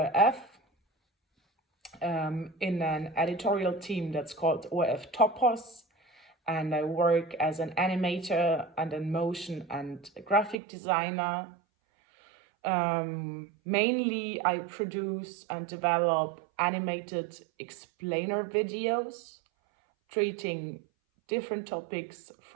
in an editorial team that's called ORF Topos, and I work as an animator and a motion and graphic designer. Mainly, I produce and develop animated explainer videos treating different topics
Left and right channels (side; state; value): left; drops out; at 10.6 s